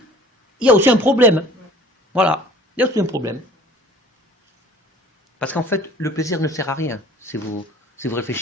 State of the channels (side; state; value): both; normal; correlation 0.49